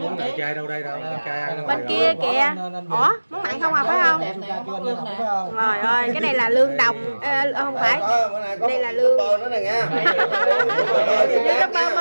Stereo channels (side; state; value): both; inverted; correlation -1.00